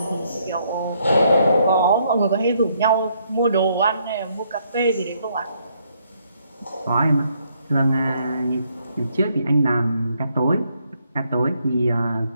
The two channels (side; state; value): both; inverted; correlation -0.72